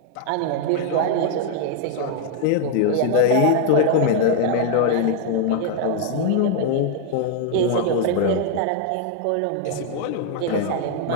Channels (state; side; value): different; both; correlation 0.00